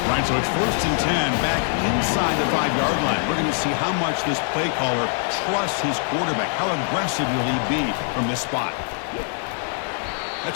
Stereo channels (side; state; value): right; silent; 56 dB below the other